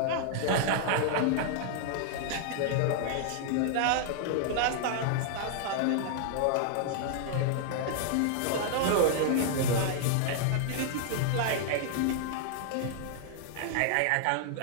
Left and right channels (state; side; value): different; both; correlation 0.00